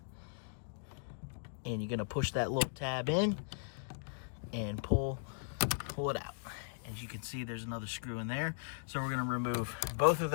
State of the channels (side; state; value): right; silent; digital silence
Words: you're gonna push that little tab in and pull it out. As you can see, there's another screw in there. So we're gonna remove both of